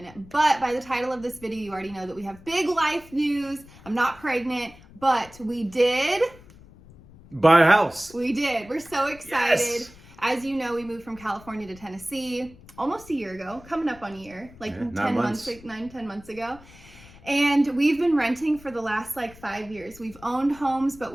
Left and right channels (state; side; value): noise; left; rumble, 22 dB below the sound